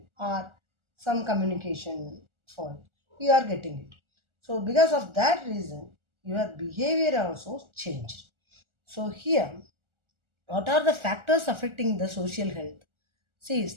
or some communication fault. You are getting it. So because of that reason, your behavior also changed. So here, what are the factors affecting the social health? See,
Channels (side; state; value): left; late; 1.4 ms